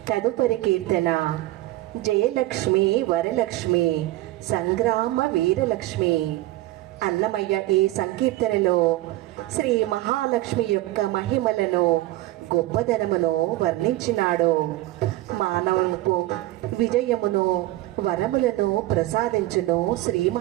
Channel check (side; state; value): left; quieter; 16.8 dB